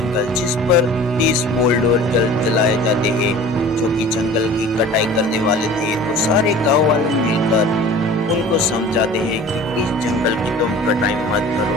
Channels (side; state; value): both; normal; correlation 0.42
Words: जिस पर 30 बुलडोजर चलाए जाते हैं जो कि जंगल की कटाई करने वाले थे। तो सारे गांव वाले मिलकर उनको समझाते हैं कि इस जंगल की तुम कटाई मत